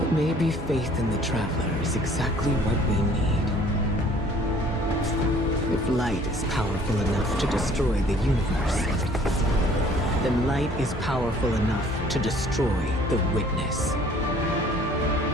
maybe faith in the Traveler is exactly what we need. If light is powerful enough to destroy the universe, then light is powerful enough to destroy the Witness.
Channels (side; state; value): both; normal; correlation 0.55